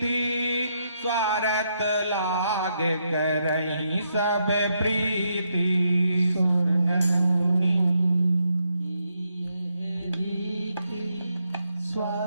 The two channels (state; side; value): inverted; both; correlation -0.79